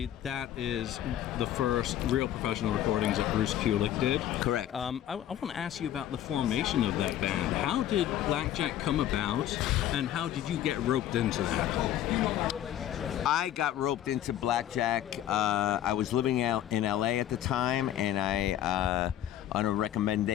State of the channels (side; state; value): right; quieter; 11.8 dB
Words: that is the first real professional recordings that Bruce Kulick did. Correct. I want to ask you about the formation of that band. How did Blackjack come about, and how did you get roped into that? I got roped into Blackjack. I was living out in LA at the time, and I on a